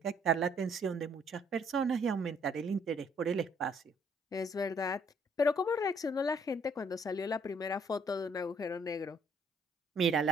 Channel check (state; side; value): normal; both; correlation 0.65